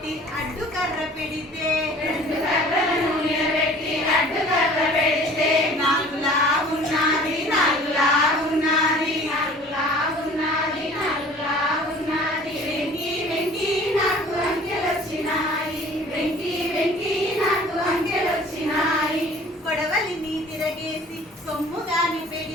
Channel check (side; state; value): both; normal; correlation 0.48